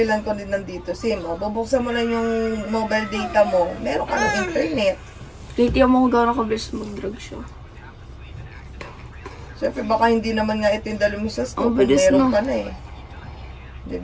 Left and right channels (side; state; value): both; identical; correlation 1.00